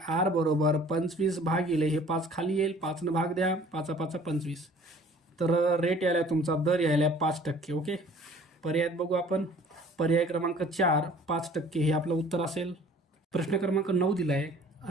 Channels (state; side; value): normal; both; correlation 0.51